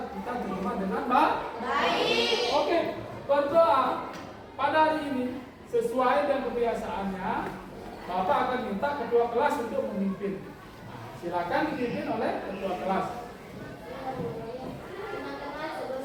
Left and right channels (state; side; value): identical; both; correlation 1.00